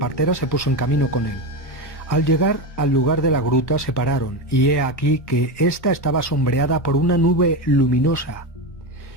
se puso en camino con él. Al llegar al lugar de la gruta se pararon, y he aquí que ésta estaba sombreada por una nube luminosa.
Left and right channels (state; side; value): late; right; 1.1 ms